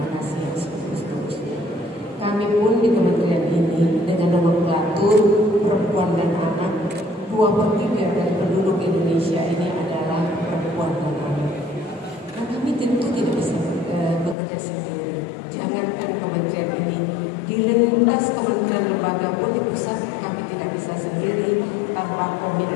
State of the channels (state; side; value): drops out; right; at 14.4 s